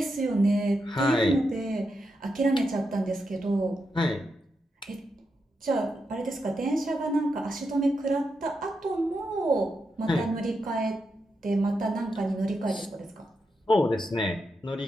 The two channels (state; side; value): normal; both; correlation 0.85